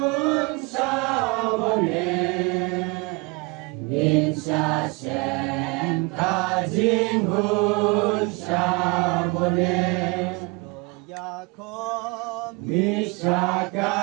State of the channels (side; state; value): left; quieter; 28.5 dB